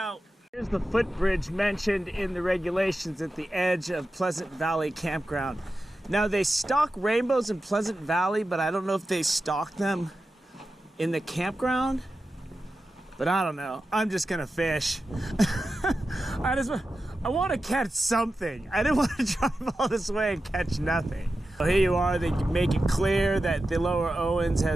Here's the footbridge mentioned in the regulations at the edge of Pleasant Valley Campground. Now they stock rainbows in Pleasant Valley, but I don't know if they stock them in the campground. But I don't know. I'm just going to fish. I want to catch something. I didn't want to drive all this way and catch nothing. So here you are. They make it clear that the Lower Owens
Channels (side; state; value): both; normal; correlation 0.92